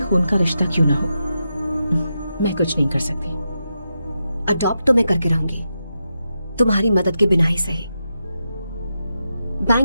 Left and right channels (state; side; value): inverted; both; correlation -0.87